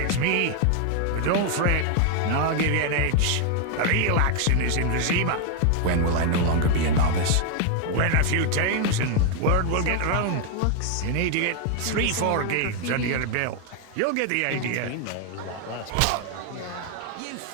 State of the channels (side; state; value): both; different; correlation 0.01